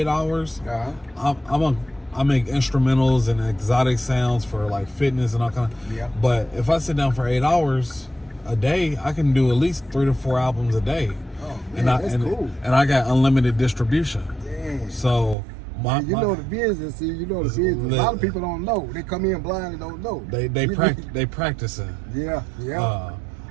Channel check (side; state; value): left; drops out; at 15.4 s